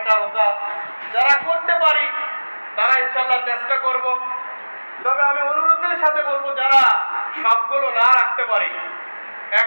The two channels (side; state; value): both; inverted; correlation -1.00